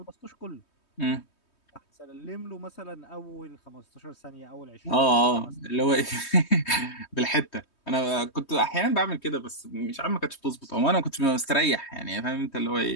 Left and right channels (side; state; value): right; late; 3.2 ms